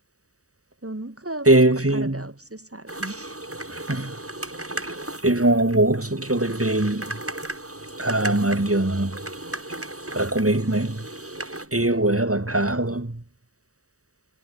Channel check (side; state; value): left; late; 0.66 ms